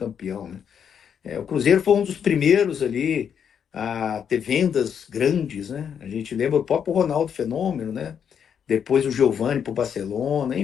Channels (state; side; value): quieter; right; 7.8 dB